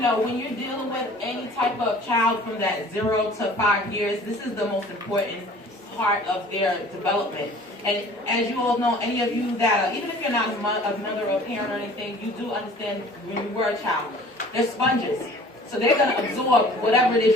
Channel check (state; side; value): normal; both; correlation 0.49